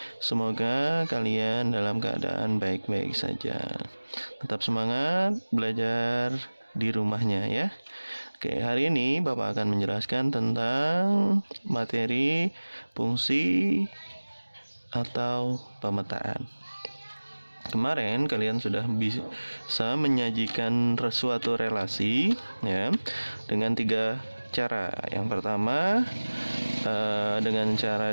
Semoga kalian dalam keadaan baik-baik saja. Tetap semangat belajar di rumahnya ya. Oke, hari ini Bapak akan menjelaskan tentang materi fungsi atau pemetaan. Kemarin kalian sudah bisa menyajikan suatu relasi ya dengan 3 cara. Yang pertama dengan cara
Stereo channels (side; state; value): both; inverted; correlation -1.00